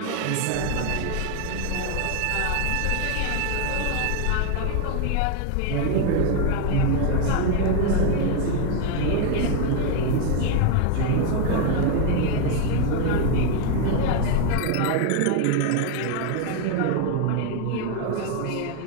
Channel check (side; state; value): both; different; correlation 0.01